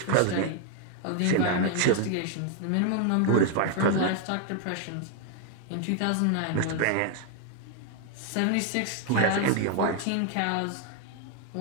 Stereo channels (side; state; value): both; different; correlation 0.00